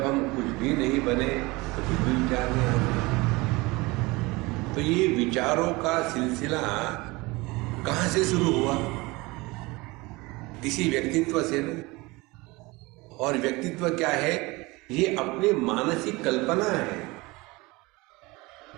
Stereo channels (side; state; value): left; quieter; 23.2 dB